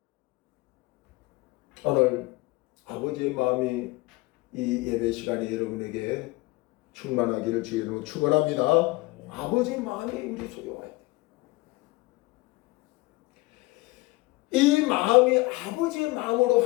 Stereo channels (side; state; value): right; quieter; 21.9 dB